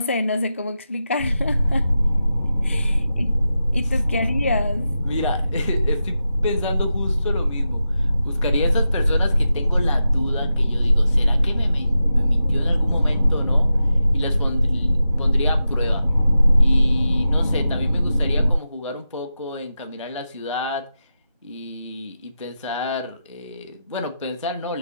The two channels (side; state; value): both; inverted; correlation -0.90